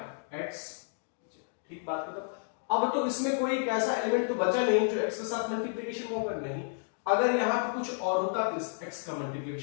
x। ठीक बात करो। अब तो इसमें कोई एक ऐसा एलिमेंट तो बचा नहीं जो x के साथ मल्टीप्लीकेशन होगा, नहीं। अगर यहां पे कुछ और होता तो इस x का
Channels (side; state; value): right; silent; digital silence